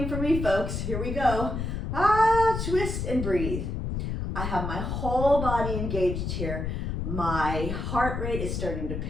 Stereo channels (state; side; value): noise; left; rumble, 3 dB below the sound